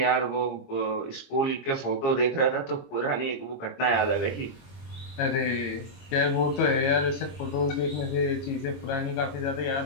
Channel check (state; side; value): late; right; 22 ms